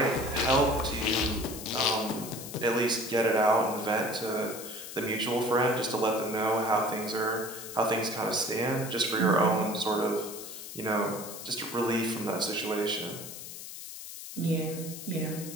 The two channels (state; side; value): noise; left; hiss, 11 dB below the sound